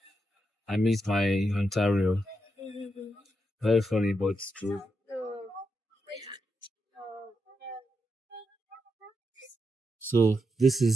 I miss my Ontario. Very funny, but it's true. So this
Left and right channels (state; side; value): normal; both; correlation 0.84